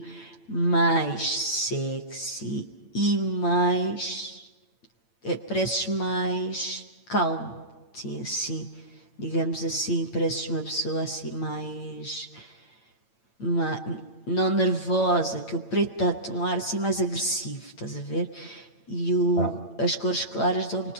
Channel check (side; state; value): right; late; 8.9 ms